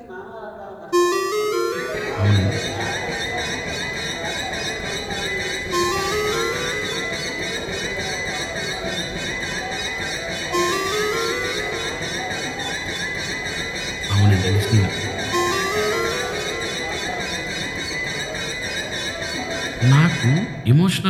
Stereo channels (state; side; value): identical; both; correlation 1.00